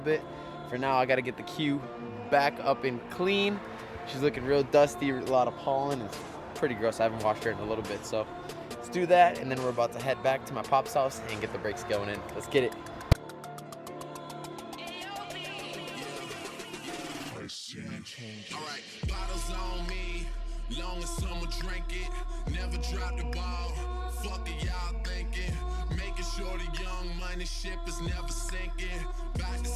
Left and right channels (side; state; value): both; identical; correlation 1.00